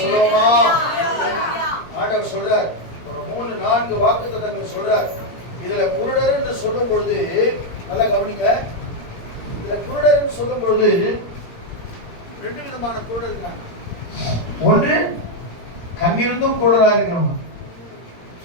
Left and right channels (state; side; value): late; right; 17 ms